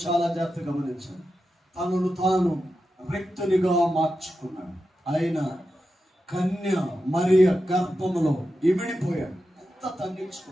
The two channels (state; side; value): normal; both; correlation 0.90